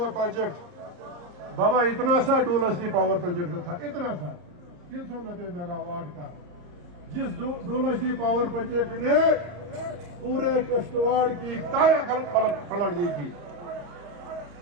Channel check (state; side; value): late; left; 34 ms